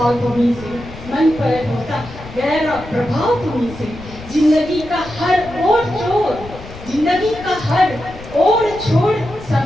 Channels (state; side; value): noise; left; rumble, 15 dB below the sound